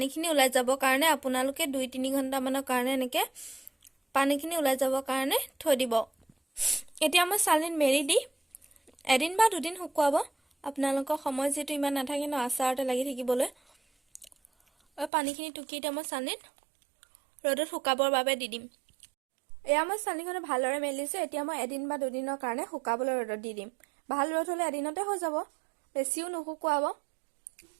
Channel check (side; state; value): left; drops out; at 15.1 s